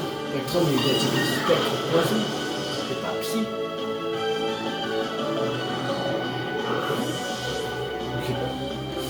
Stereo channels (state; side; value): identical; both; correlation 1.00